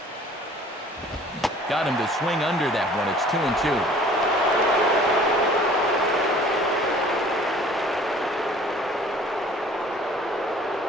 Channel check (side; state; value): both; normal; correlation 0.51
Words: Got him to swing under that one. It's 2-2.